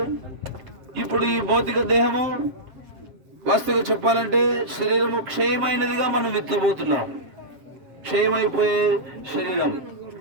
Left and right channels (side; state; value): left; late; 7.6 ms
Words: ఇప్పుడు ఈ భౌతిక దేహము వాస్తవంగా చెప్పాలంటే శరీరము క్షయమైనదిగా మనం విత్తబోతున్నాం. క్షయమైపోయే శరీరం.